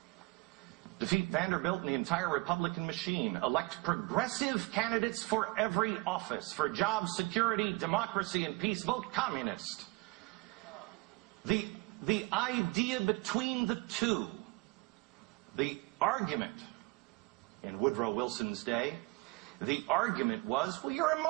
defeat Vanderbilt and the entire Republican machine. Elect progressive candidates for every office. For jobs, security, democracy, and peace, vote communist. The idea between the two, the argument in Woodrow Wilson's day, the argument was, well, you're a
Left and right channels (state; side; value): quieter; left; 25.1 dB